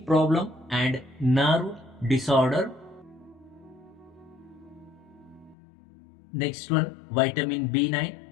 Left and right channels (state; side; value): drops out; right; at 5.6 s